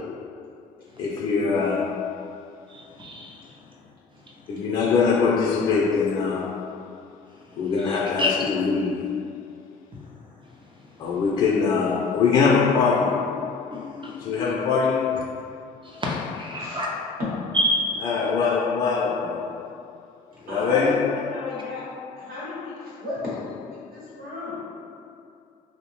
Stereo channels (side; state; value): right; quieter; 4.5 dB